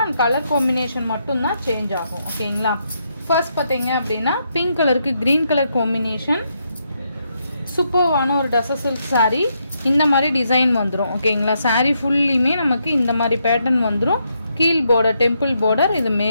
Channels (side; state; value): both; inverted; correlation -0.79